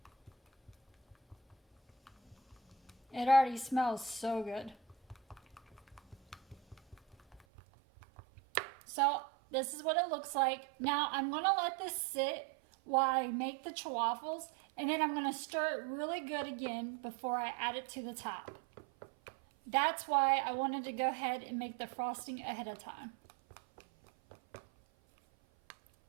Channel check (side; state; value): left; drops out; at 7.4 s